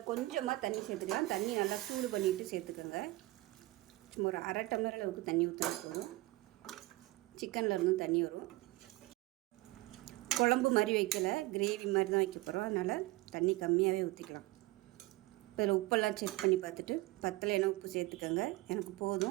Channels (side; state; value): left; quieter; 19.9 dB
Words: கொஞ்சமாக தண்ணி சேர்த்துக்கலாம். தண்ணி நல்லா சூடு பண்ணிவிட்டு சேர்த்துக்கோங்க. சும்மா ஒரு அரை டம்ளர் அளவுக்கு தண்ணி ஊற்றினா போதும். சிக்கனில் இருந்தும் தண்ணி வரும். குழம்பு மாதிரி வைக்கலை, கிரேவி மாதிரி தான் வைக்க போகிறோம். அதனால் தண்ணி கம்மியாகவே ஊற்றிக்கலாம். இப்போ இதில் உப்பெல்லாம் செக் பண்ணி பார்த்துட்டு பத்தலைன்னா உப்பு சேர்த்துக்கோங்க. எனக்கு